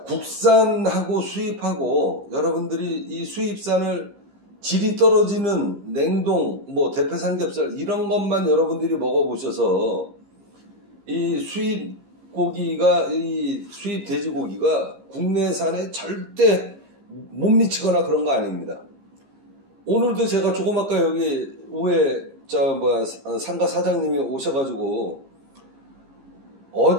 국산하고 수입하고 여러분들이 이 수입산을 질이 떨어지는 냉동, 뭐 대패 삼겹살 이런 것만 여러분들이 먹어보셔서 이 수입 고기가, 이 수입 돼지고기가 국내산에 절대 못 미치거나 그런 거 아닙니다. 오늘도 제가 조금 아까 여기 우에 상가 사장님이 오셔가지고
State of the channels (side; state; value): left; late; 15 ms